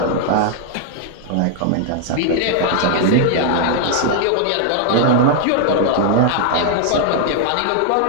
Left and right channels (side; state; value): both; different; correlation 0.00